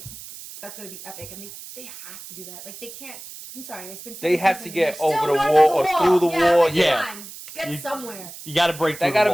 that's going to be epic, and they have to do that. Like they can't. I'm sorry, it's been. They 7 have to seasons, get they're still over the north wall of or through the yeah, wall. like, Yeah. come on, get You- somewhere. You gotta break through That gotta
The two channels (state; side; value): noise; right; hiss, 14 dB below the sound